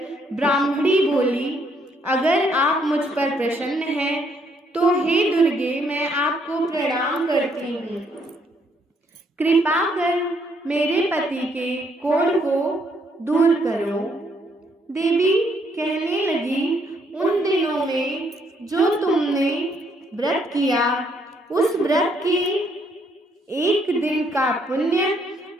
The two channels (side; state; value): both; normal; correlation 0.70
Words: ब्राह्मणी बोली, अगर आप मुझ पर प्रसन्न हैं तो हे दुर्गे, मैं आपको प्रणाम करती हूँ। कृपा कर मेरे पति के कोढ़ को दूर करो। देवी कहने लगी, उन दिनों में जो तुमने व्रत किया उस व्रत के एक दिन का पुण्य